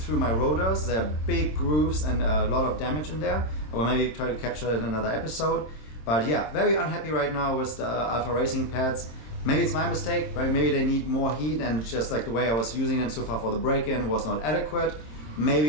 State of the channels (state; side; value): late; right; 26 ms